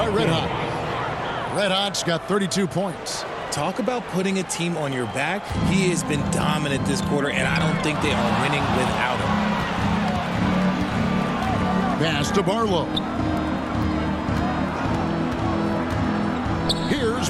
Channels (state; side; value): identical; both; correlation 1.00